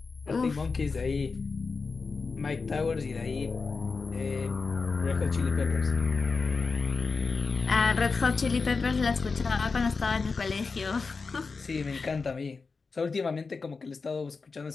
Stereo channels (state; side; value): quieter; right; 4.5 dB